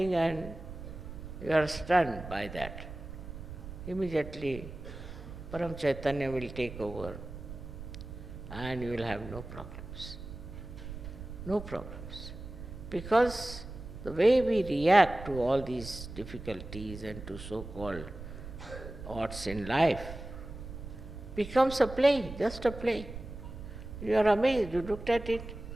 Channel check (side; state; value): right; noise; rumble, 11 dB below the sound